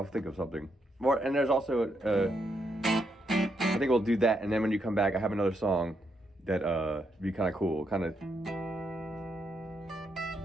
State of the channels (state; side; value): normal; both; correlation 0.79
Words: think of something more. And there's also, I think we'll do that. And then when you come back, I have another song that be kind of cool, kind of.